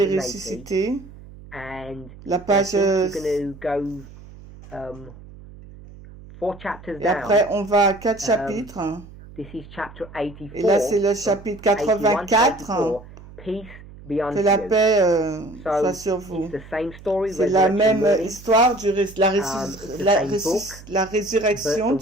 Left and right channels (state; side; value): noise; right; hum, 19 dB below the sound